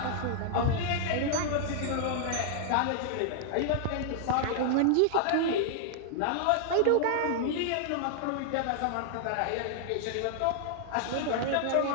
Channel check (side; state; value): both; different; correlation 0.00